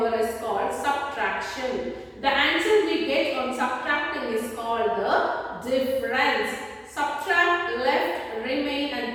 is called subtraction. The answer we get on subtracting is called the difference. Subtract, left, remain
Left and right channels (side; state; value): both; identical; correlation 1.00